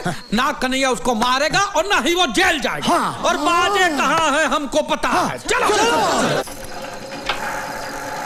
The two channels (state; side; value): identical; both; correlation 1.00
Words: ना कन्हैया उसको मारेगा और ना ही वो जेल जाएगा। और बाजे कहाँ है हमको पता है। चलो।